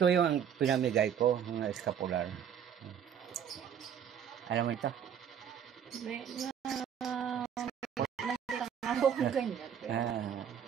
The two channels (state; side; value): quieter; left; 8.5 dB